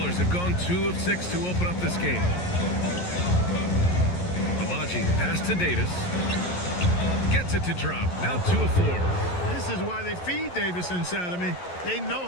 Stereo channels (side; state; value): right; late; 11 ms